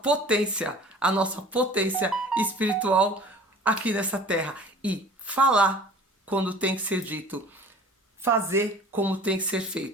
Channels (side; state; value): both; normal; correlation 0.46